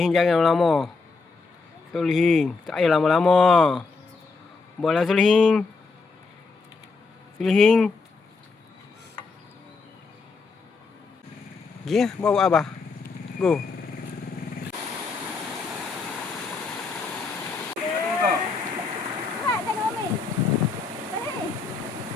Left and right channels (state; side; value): quieter; right; 4.3 dB